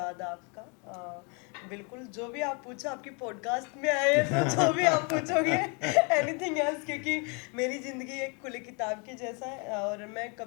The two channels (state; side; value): quieter; right; 34.0 dB